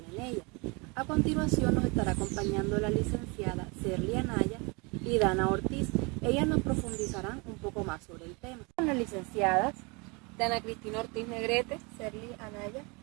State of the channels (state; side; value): quieter; left; 29.2 dB